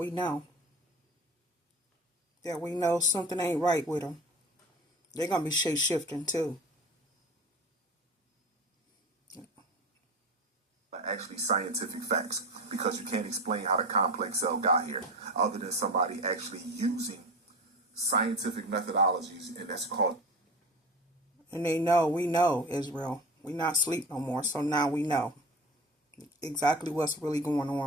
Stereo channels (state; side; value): normal; both; correlation 0.31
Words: know. That we know something ain't right with them. They're going to be shape-shifting too. Actually scientific facts, because you can't explain how the complex cell got here other than somebody actually using scientific methodologies, and that's called. And they know, we know, Israel. We not sleep no more, so now we know exactly what's really going